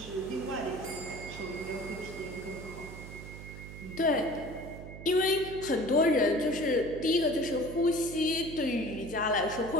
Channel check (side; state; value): right; noise; hum, 12 dB below the sound